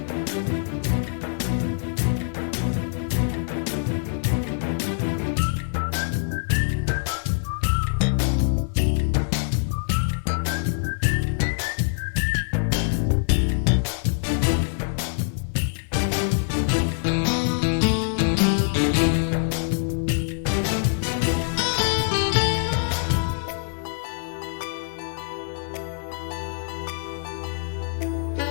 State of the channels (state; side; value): silent; right; 62 dB below the other